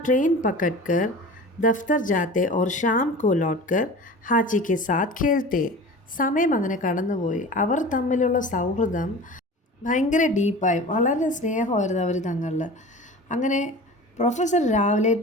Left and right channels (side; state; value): both; normal; correlation 0.36